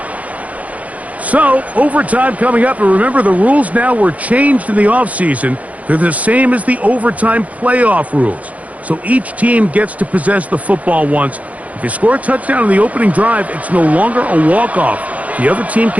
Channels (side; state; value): left; late; 0.068 ms